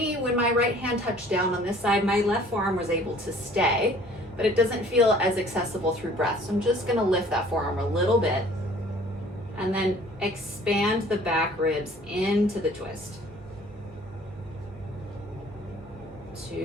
when my right hand touched down on this side, my left forearm was able to stay, but it doesn't feel as accessible through breath. So I'm just gonna lift that forearm a little bit and then expand the back ribs into the twist.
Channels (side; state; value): both; normal; correlation 0.53